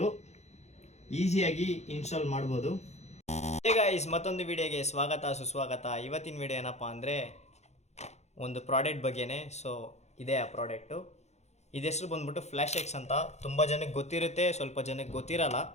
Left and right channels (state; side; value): late; right; 0.32 ms